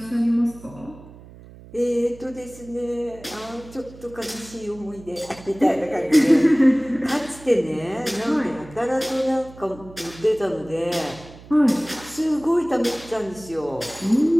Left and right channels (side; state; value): right; noise; hum, 19 dB below the sound